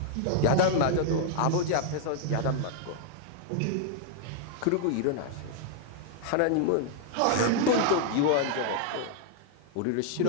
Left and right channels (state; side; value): different; both; correlation 0.00